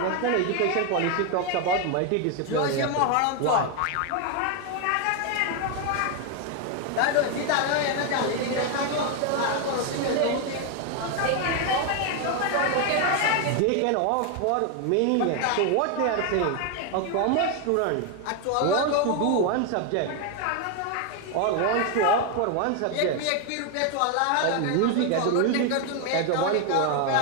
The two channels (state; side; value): different; both; correlation 0.01